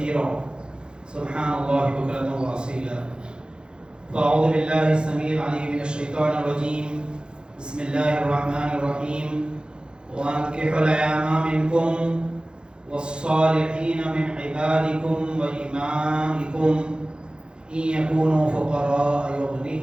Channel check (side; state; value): left; late; 0.050 ms